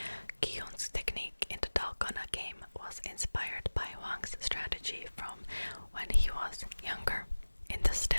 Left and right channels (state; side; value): inverted; both; correlation -1.00